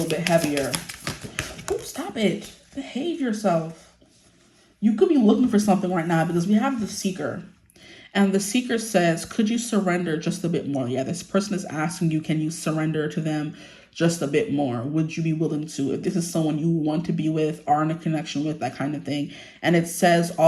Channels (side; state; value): both; identical; correlation 1.00